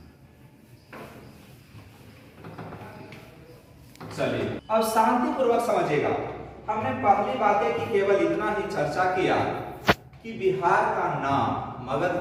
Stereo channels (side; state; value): both; identical; correlation 1.00